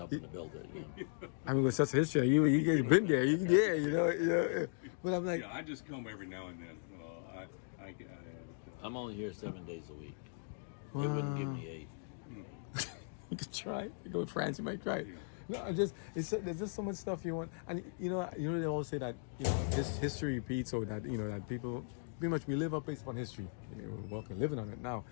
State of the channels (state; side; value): silent; right; digital silence